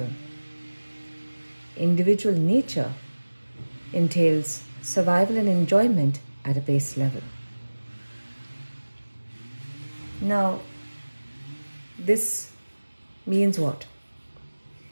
Individual nature entails survival and enjoyment at a base level. Now, this means what?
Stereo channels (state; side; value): inverted; both; correlation -1.00